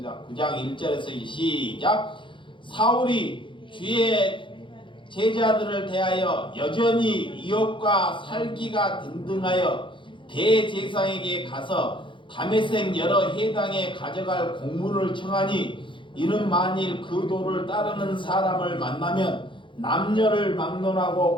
9장 1절에서 시작. 사울이 주의 제자들을 대하여 여전히 이업과 살기가 등등하여 대제사장에게 가서 다메섹 여러 해당에 가져갈 공문을 청하니 이는 만일 그 도를 따르는 사람을 만나면 남녀를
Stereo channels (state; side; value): late; right; 0.24 ms